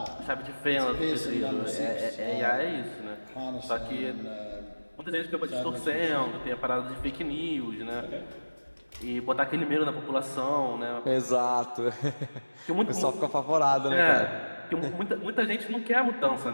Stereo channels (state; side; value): inverted; both; correlation -1.00